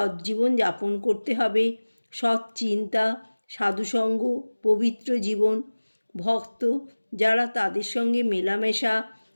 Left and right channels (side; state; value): both; inverted; correlation -1.00